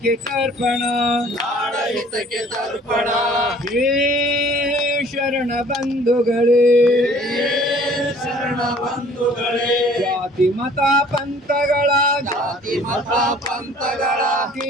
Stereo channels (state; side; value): normal; both; correlation 0.53